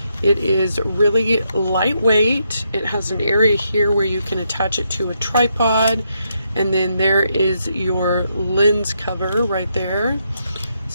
It is really lightweight. It has an area here where you can attach it to a tripod, and then there is your lens cover right there.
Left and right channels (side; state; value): both; inverted; correlation -0.79